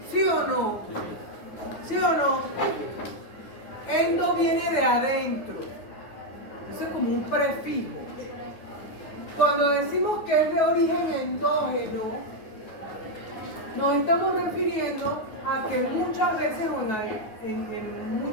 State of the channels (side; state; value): right; late; 9.3 ms